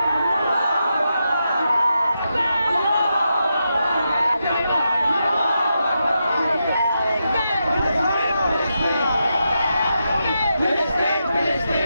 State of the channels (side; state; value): both; inverted; correlation -0.86